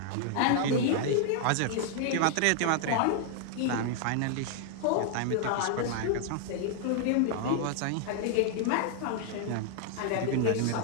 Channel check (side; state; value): both; different; correlation 0.00